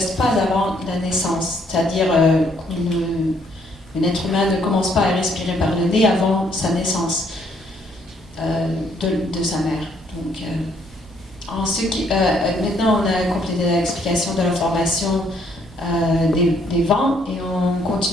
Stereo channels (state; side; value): normal; both; correlation 0.68